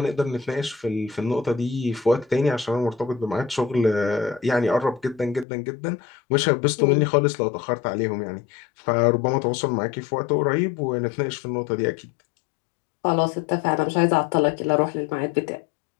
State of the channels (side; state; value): right; drops out; at 5.5 s